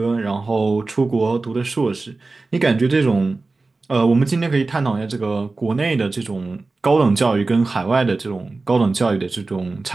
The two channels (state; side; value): quieter; left; 3.6 dB